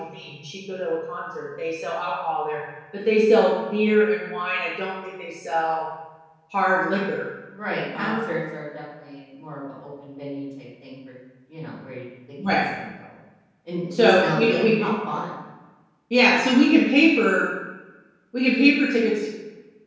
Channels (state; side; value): identical; both; correlation 1.00